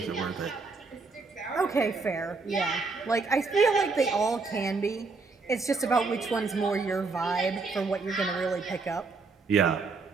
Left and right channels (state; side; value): quieter; left; 4.2 dB